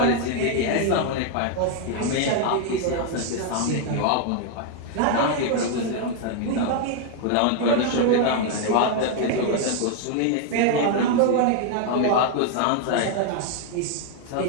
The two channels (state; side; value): different; both; correlation 0.00